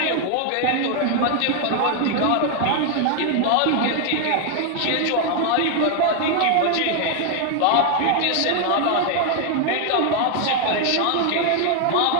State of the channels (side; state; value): both; different; correlation 0.00